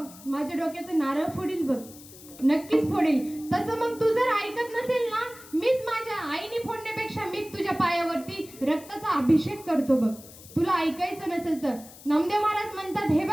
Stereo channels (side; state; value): left; noise; hiss, 19 dB below the sound